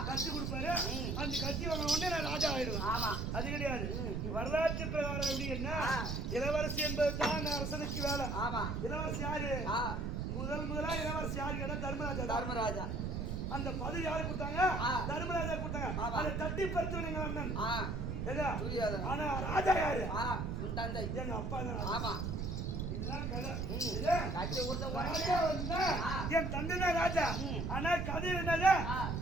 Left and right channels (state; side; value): noise; right; rumble, 2 dB below the sound